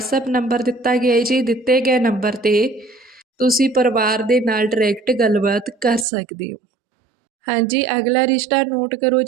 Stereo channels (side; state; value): left; drops out; at 6.1 s